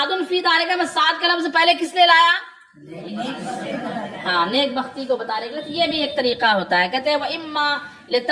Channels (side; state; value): both; identical; correlation 1.00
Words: فی دارک میں سعد کا لفظ پہلے کس لیے لایا؟ ہاں نیک بختی کو بتانے کے لیے. یہ بھی ایک طریقہ ہوتا ہے. کہتے ہیں وَإِمَّا